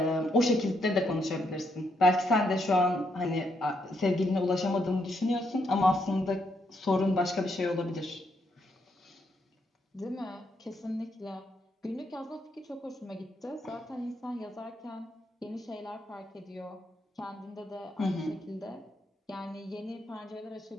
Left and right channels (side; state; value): both; normal; correlation 0.77